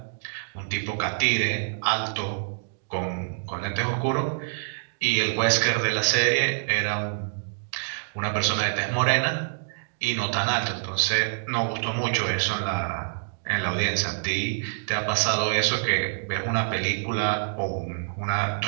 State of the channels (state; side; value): silent; left; digital silence